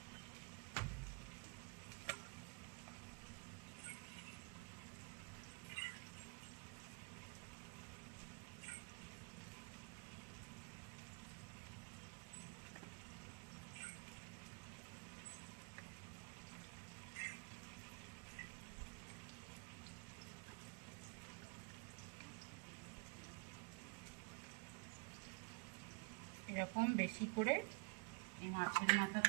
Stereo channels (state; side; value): quieter; left; 33.0 dB